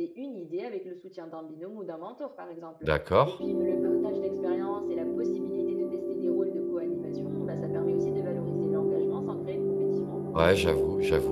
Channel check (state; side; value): identical; both; correlation 1.00